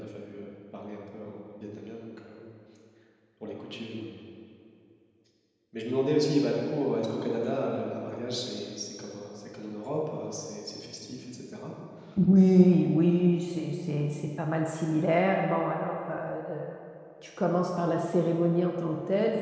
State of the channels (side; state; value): both; identical; correlation 1.00